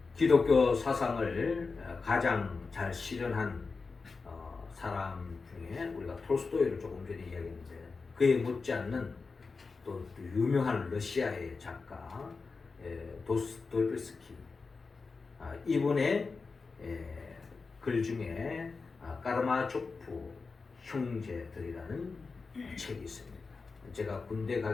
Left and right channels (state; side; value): quieter; right; 4.4 dB